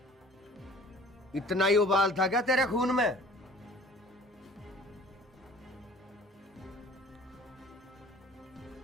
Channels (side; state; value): both; normal; correlation 0.49